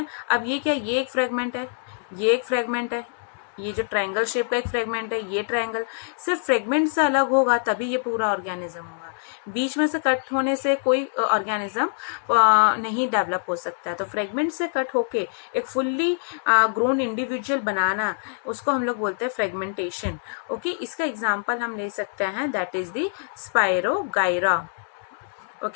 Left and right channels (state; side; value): silent; right; digital silence